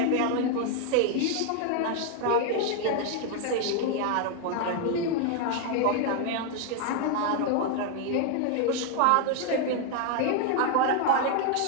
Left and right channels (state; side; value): different; both; correlation 0.00